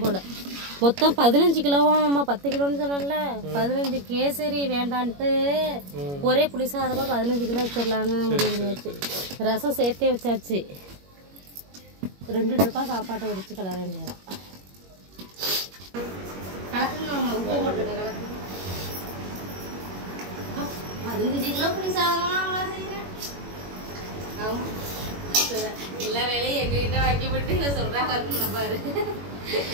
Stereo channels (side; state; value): left; late; 21 ms